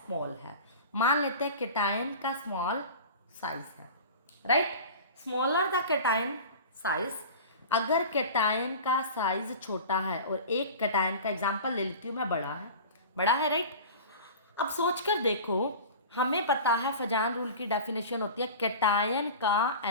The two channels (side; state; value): both; inverted; correlation -0.36